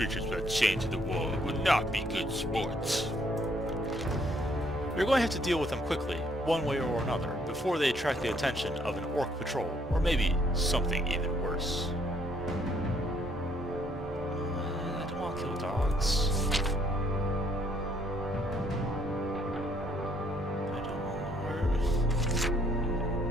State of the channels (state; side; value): normal; both; correlation 0.67